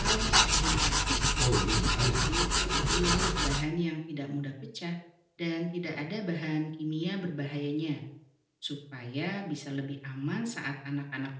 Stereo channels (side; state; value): both; identical; correlation 1.00